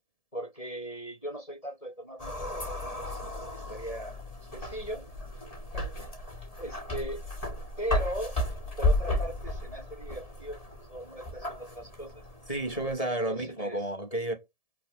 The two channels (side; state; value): right; late; 1.7 ms